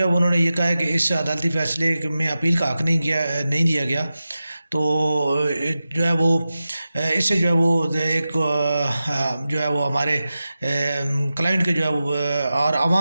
ہے انہوں نے یہ کہا ہے کہ اس عدالتی فیصلے میں اپیل کا حق نہیں دیا گیا۔ تو جو ہے وہ اس سے جو ہے وہ ایک جو ہے وہ ہمارے کلائنٹ کے جو ہے وہ اور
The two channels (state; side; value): inverted; both; correlation -0.93